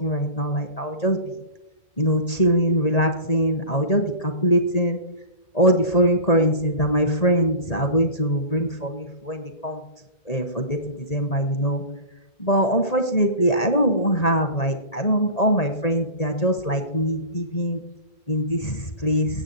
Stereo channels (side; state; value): right; late; 1.8 ms